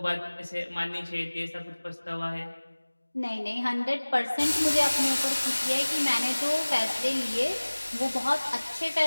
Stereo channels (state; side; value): inverted; both; correlation -1.00